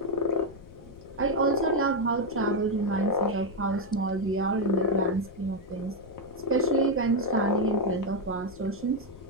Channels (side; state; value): left; noise; rumble, 19 dB below the sound